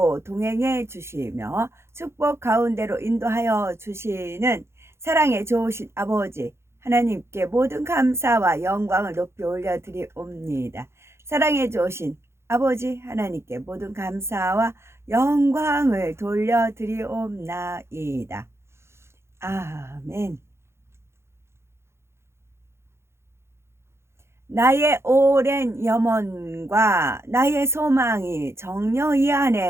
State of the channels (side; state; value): left; late; 0.13 ms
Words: 동행해 주시며 축복 가운데로 인도하여 주시는 사랑의 좋으신 아버지 하나님께 모든 감사와 영광을 높이 올려드리옵니다. 사랑의 좋으신 아버지 하나님께 모든 감사와 영광을 돌려드리옵나이다. 아멘. 나의 오랜 염원과 나의 소망이 정녕 이